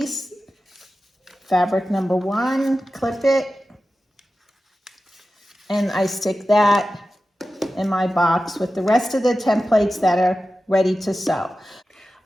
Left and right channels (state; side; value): normal; both; correlation 0.93